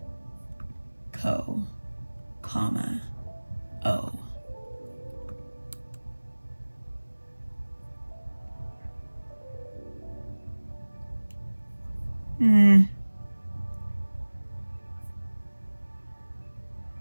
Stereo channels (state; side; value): inverted; both; correlation -1.00